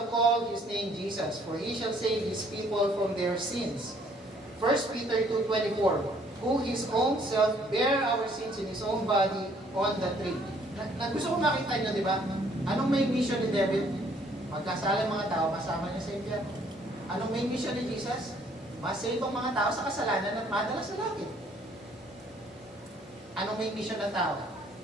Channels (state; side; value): normal; both; correlation 0.62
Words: call his name Jesus, for he shall save his people from their sins. 1 Peter 2:24, who his own self bare our sins in his own body on the tree. Gusto ko makita nyo, di ba? Anong may mission ni David? Magkasala mga tao, masama niya sa impyerno. Anong main mission ni Jesus? Masave ang mga tao sa kasalanan at madala sa langit. Anong main mission ng tao?